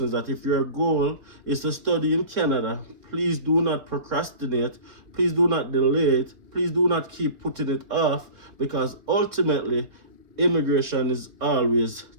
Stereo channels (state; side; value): late; left; 3.8 ms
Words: that if your goal is to study in Canada, please do not procrastinate, please do not delay it, please do not keep putting it off, because ultimately immigration is always